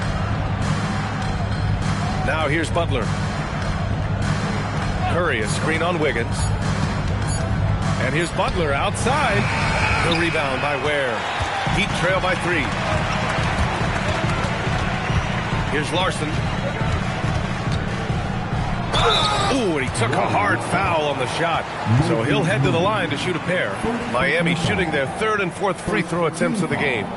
Now here's Butler. Curry, a screen on Wiggins. And here's Butler outside. The rebound by Ware. Heat trail by 3. Here's Larson. Ooh, and he took a hard foul on the shot. So he'll head to the line to shoot a pair. Miami shooting their 3rd and 4th free throw attempts of the game.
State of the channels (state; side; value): identical; both; correlation 1.00